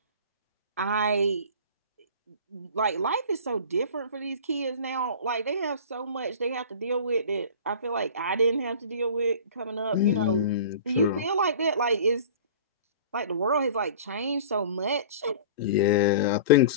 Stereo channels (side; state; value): both; inverted; correlation -0.40